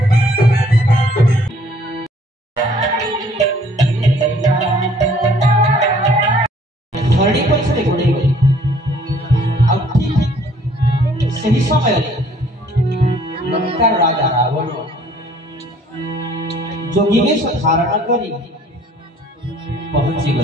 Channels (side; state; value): both; normal; correlation 0.58